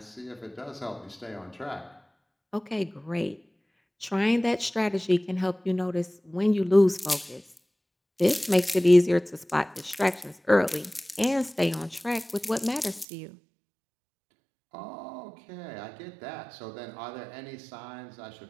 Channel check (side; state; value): left; drops out; at 13.1 s